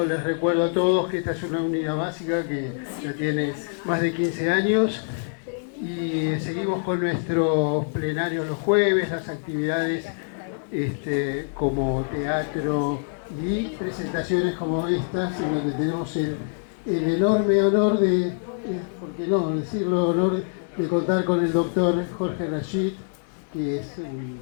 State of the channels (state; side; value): silent; right; digital silence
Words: les recuerdo a todos que esta es una unidad básica que ya tiene más de 15 años y seguimos con nuestros plenarios los jueves, las actividades como teatro y presentaciones como estas, en donde tenemos el enorme honor de, ¿por qué no decirlo, honor de contar con el doctor Jorge Rashid, que es